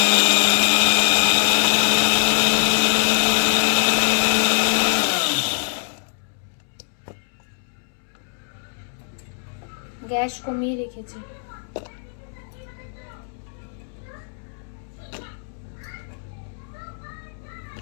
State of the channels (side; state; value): right; silent; 64 dB below the other